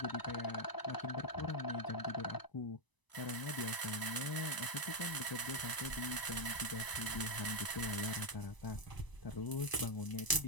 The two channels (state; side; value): late; right; 1.0 ms